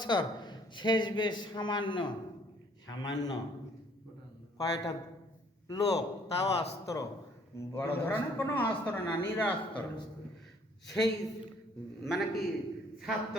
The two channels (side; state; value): both; normal; correlation 0.60